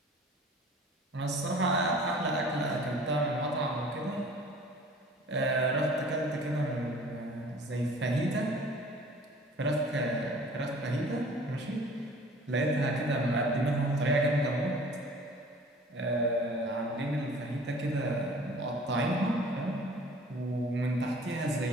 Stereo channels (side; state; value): both; normal; correlation 0.48